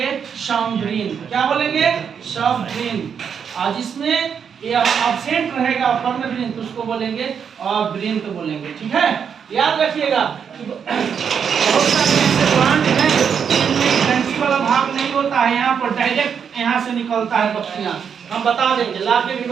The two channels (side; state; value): left; quieter; 7.2 dB